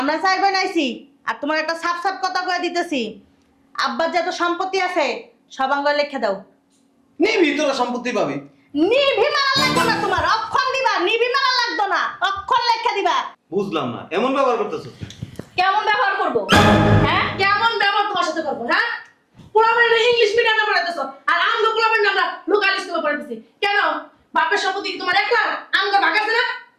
চাই বানাইছি, আর তোমার একটা সাপ সাপ কথা কয়ে দিতেছি। আব্বার যত সম্পত্তি আছে সব আঙ্গুলে লিখে দাও। নিবি তোরা সম্পত্তি পাবি। নিভি মারা লাগতো না তোমার, অক্ষর দিবা। নিভি মারা লাগতো না, অক্ষর লেখা দিবা। বুঝলাম না, এমন ব্যবহার করতেছো। কেমন ব্যবহার করব? হ্যাঁ কেমন ব্যবহার তোমার সাথে করবো? হ্যাঁ, পোলাপান ইংলিশ মিডিয়ামে পড়াইতেছো, আর আমরা পোলাপান আমরা লোকাল স্কুলে পড়াইতেছি কেন? বাপের সম্পত্তি কি তোমার একলা? আমগো ভাগ আছে না?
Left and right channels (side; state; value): both; identical; correlation 1.00